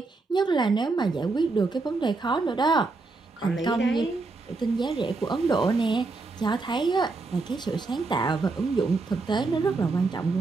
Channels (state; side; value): quieter; left; 3.7 dB